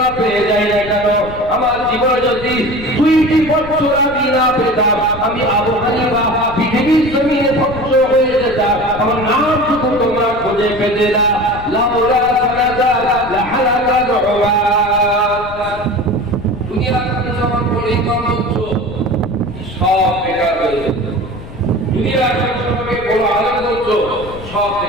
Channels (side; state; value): left; noise; rumble, 14 dB below the sound